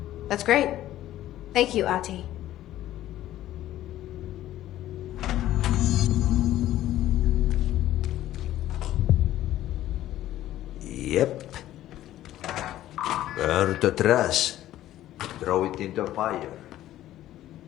That's great. Thank you, Ahti. Yep. Burn the trash. Throw it in the fire.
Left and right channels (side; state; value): right; quieter; 13.7 dB